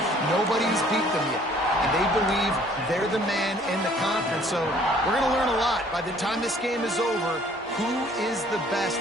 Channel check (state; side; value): normal; both; correlation 0.57